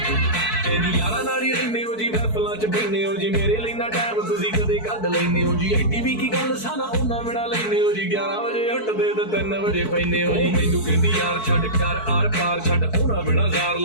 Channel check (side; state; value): right; late; 4.6 ms